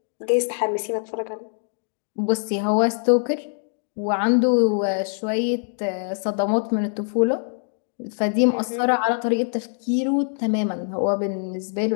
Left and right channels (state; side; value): silent; right; digital silence